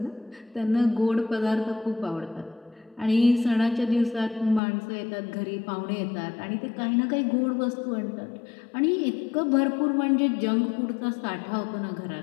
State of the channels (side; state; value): right; drops out; at 4.6 s